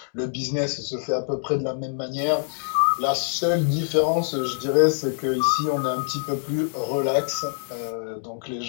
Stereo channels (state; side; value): silent; right; digital silence